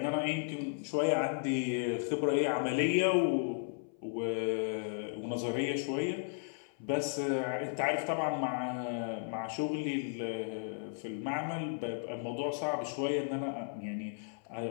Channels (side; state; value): right; silent; 55 dB below the other